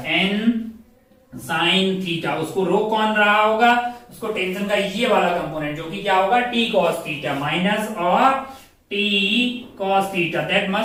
n sin थीटा। उसको रो कौन रहा होगा, उसको टेंशन का ये वाला कंपोनेंट जो कि क्या होगा t cos थीटा माइनस और t cos theta, that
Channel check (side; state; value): both; identical; correlation 1.00